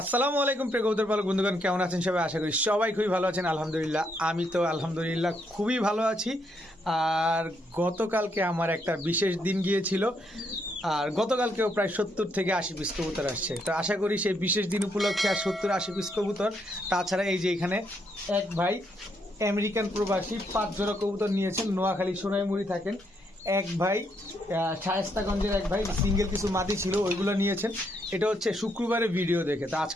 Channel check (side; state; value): both; normal; correlation 0.75